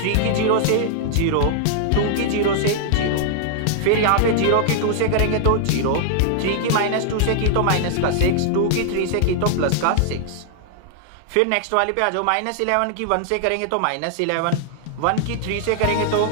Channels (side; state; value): both; different; correlation -0.01